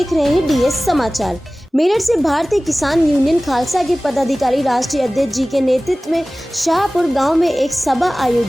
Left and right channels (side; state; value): both; normal; correlation 0.98